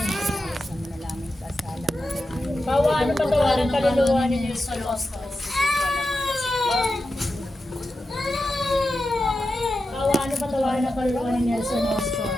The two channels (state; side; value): normal; both; correlation 0.90